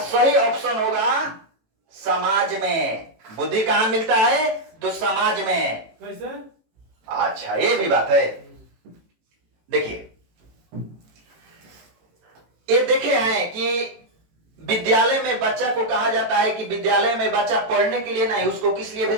ऑप्शन होगा समाज में। बुद्धि कहां मिलता है? तो समाज में। कैसे? अच्छा ये भी बात है। देखिए ये देखे हैं कि विद्यालय में बच्चा को कहा जाता है कि विद्यालय में बच्चा पढ़ने के लिए नहीं, उसको किस लिए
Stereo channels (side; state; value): left; late; 18 ms